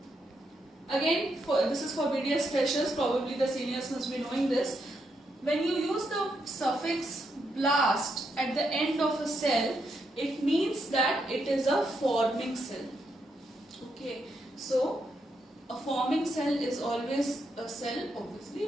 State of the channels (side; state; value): both; normal; correlation 0.80